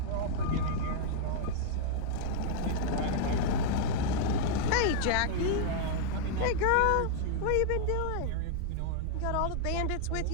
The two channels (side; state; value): both; different; correlation 0.00